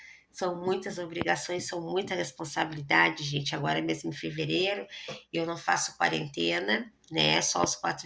São muitas obrigações, são muita responsabilidade, gente. Agora mesmo em fevereiro, eu não faço quarentena, né? Só os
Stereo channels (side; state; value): both; identical; correlation 1.00